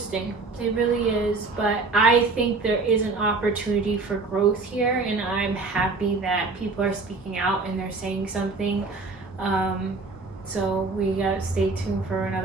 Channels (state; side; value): quieter; left; 3.8 dB